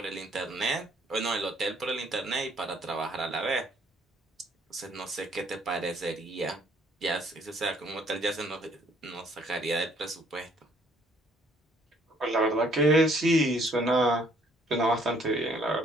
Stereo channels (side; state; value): both; normal; correlation 0.63